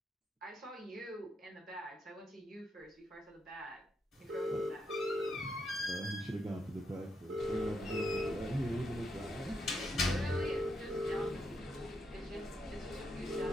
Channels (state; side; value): normal; both; correlation 0.80